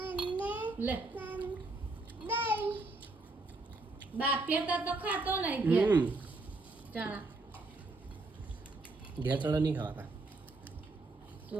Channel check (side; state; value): left; quieter; 3.2 dB